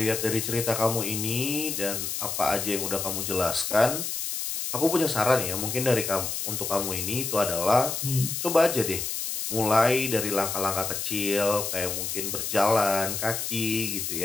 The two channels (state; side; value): noise; left; hiss, 3 dB below the sound